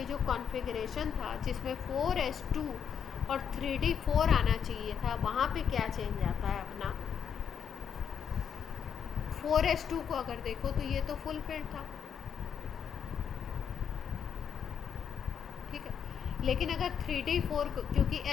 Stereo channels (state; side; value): quieter; right; 7.8 dB